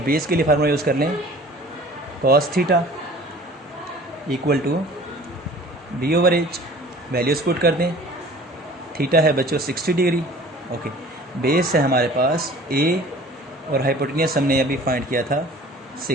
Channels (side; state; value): both; normal; correlation 0.47